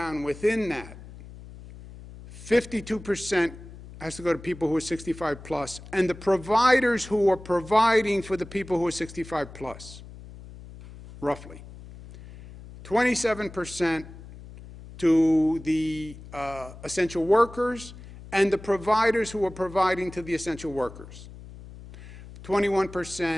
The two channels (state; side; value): noise; left; hum, 16 dB below the sound